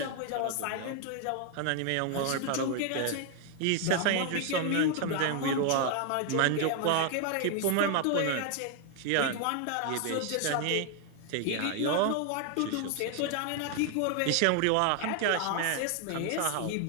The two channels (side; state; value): both; different; correlation 0.00